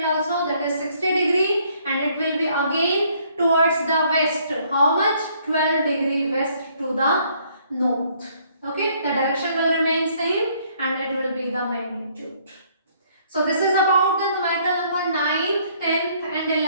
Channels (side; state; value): both; inverted; correlation -0.64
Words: also, that is 60 degree, and it will be again towards the west. How much? 12 degree west to the north. Okay, the direction will remain same and it will be the magnitude. So this is about the numerical number 9th, 10th and